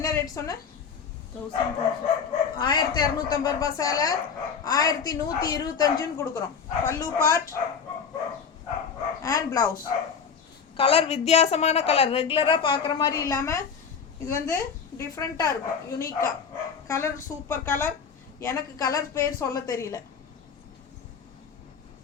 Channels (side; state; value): right; quieter; 6.4 dB